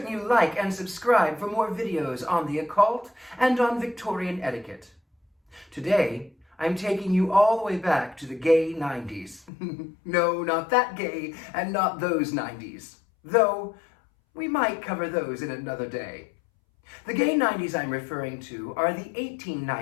you like and subscribe for more videos on the occult and on Victorian etiquette. Today, I'm taking you all the way back to the gay 90s. No, not that gay and not those 90s. Though, we might cover those in another day. The gay 90s I'm referring to are the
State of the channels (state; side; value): drops out; right; at 9.5 s